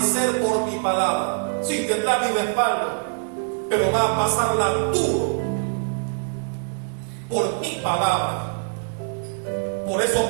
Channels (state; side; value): silent; left; digital silence